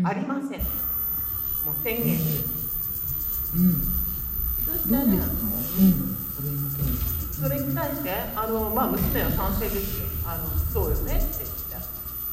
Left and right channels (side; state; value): both; identical; correlation 1.00